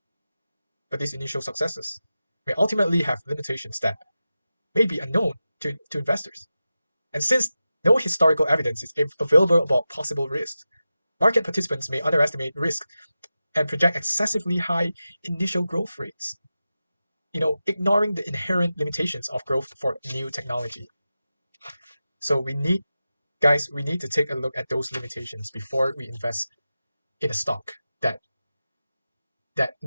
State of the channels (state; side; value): inverted; both; correlation -0.93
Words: But these initial successes may ultimately have limitations that may be unknown to investors. And since no historical evidence is available about possible risks, market participants may underestimate risk and project excessively high initial growth rates, ignoring the inherent limitations of growth for new technology. So we need to take a look at those limitations before we invest in a stock that